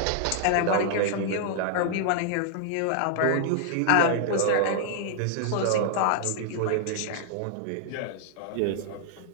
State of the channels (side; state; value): both; different; correlation -0.01